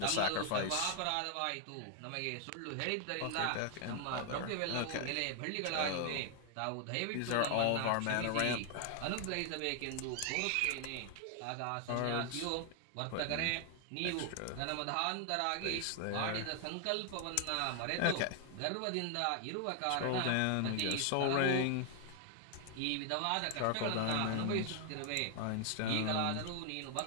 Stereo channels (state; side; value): different; both; correlation 0.00